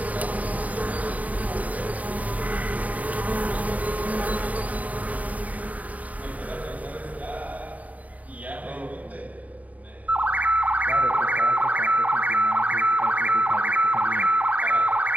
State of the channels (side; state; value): left; late; 0.072 ms